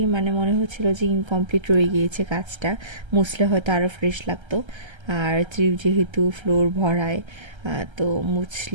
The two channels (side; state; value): left; late; 1.3 ms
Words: মানে মনে হচ্ছিল যে ইনকমপ্লিট রয়ে গিয়েছে কাজটা, মুছলে হয়তো আরও ফ্রেশ লাগতো। আর ত্রিপ যেহেতু ফ্লোর ভরায়, তো